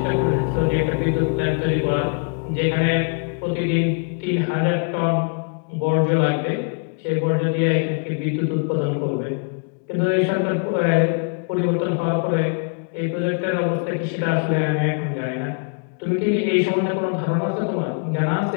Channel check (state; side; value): quieter; right; 37.3 dB